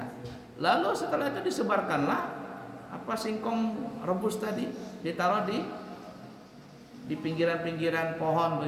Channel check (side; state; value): both; identical; correlation 1.00